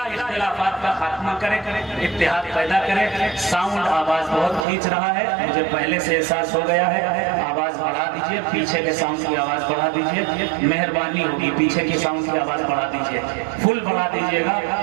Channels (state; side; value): drops out; left; at 4.7 s